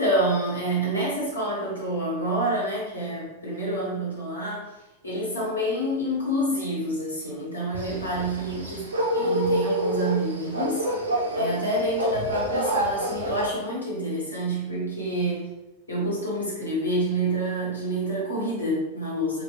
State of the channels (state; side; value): normal; both; correlation -0.11